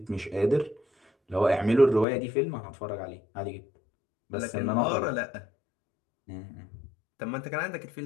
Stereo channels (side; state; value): right; drops out; at 2.1 s